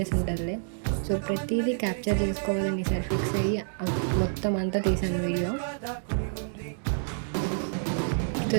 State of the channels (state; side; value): silent; left; digital silence